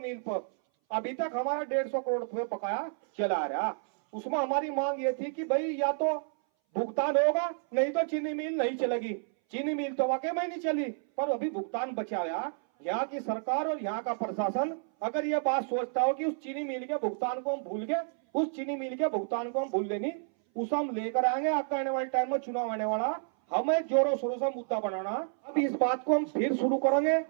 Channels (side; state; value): left; silent; 58 dB below the other